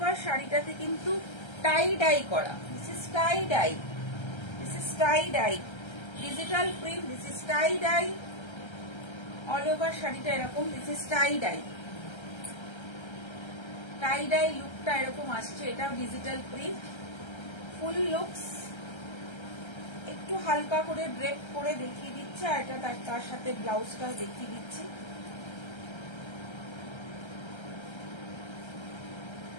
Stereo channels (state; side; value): late; right; 1.3 ms